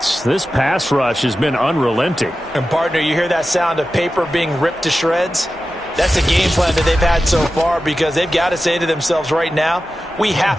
This pass rush has been unrelenting. And, partner, you hear that sound of paper being ripped to shreds? That's a game plan that they've had so far because they've got to say to themselves right now, we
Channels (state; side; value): normal; both; correlation 0.93